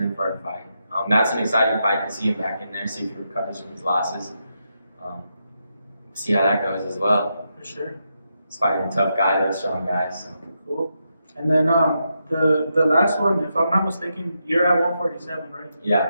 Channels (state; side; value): inverted; both; correlation -0.84